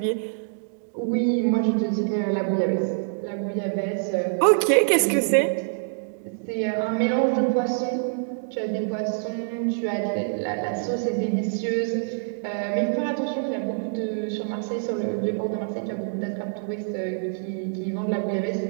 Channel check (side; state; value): left; silent; digital silence